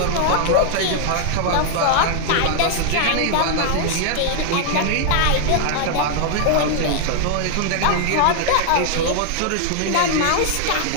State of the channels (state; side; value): different; both; correlation 0.00